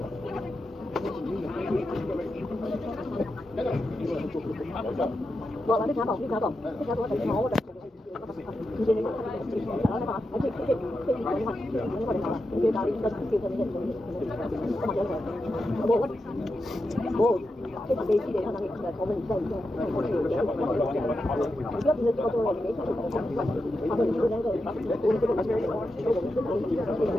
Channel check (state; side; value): normal; both; correlation 0.88